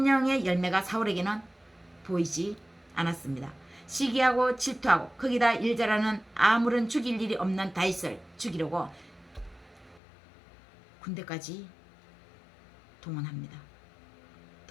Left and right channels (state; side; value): drops out; right; at 10.0 s